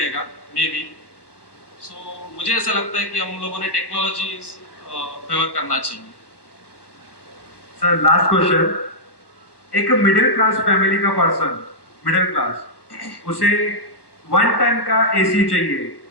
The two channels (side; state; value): right; late; 1.2 ms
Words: मे बी। सो मुझे ऐसा लगता है कि हम लोगों ने टेक्नोलॉजी फेवर करना चाहिए। सर लास्ट क्वेश्चन, एक मिडिल क्लास फैमिली का पर्सन, मिडिल क्लास, उसे 1 टन का एसी चाहिए,